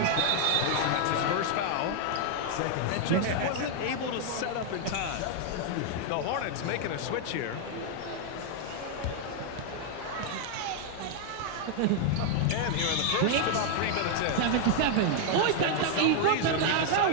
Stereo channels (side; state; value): both; different; correlation 0.00